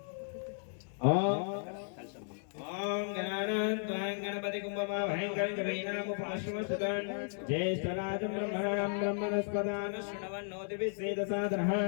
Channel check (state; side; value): silent; right; digital silence